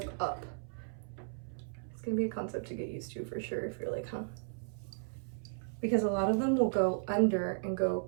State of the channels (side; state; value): left; silent; 54 dB below the other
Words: up. It's gonna be a concept to get used to for sure if you're like, huh? Because a lot of them will go under and go